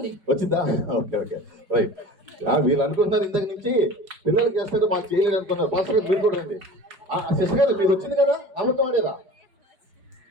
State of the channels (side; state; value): left; late; 5.2 ms